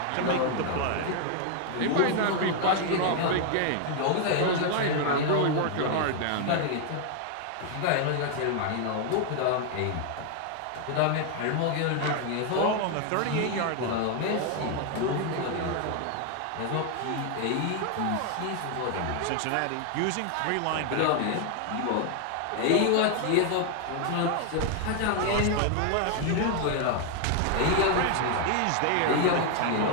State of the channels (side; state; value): both; different; correlation 0.00